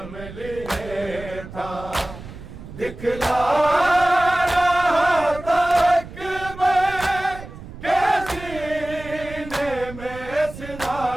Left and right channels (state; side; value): noise; right; rumble, 14 dB below the sound